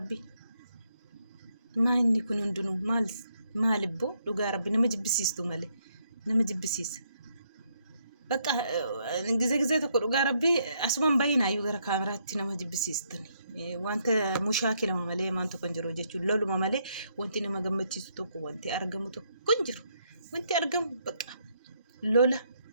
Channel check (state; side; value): inverted; both; correlation -0.74